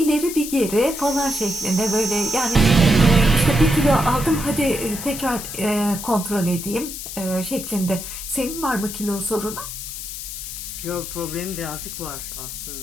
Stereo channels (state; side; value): noise; left; hiss, 8 dB below the sound